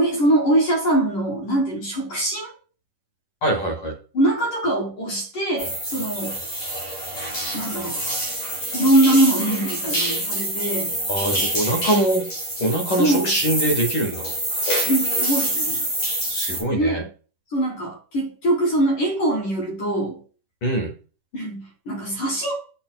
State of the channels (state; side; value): late; right; 10 ms